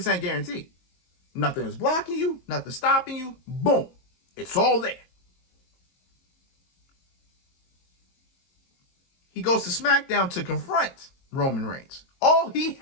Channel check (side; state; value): right; late; 22 ms